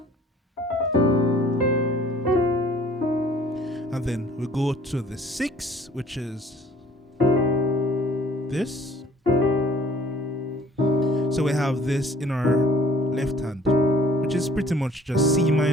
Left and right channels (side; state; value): both; normal; correlation 0.55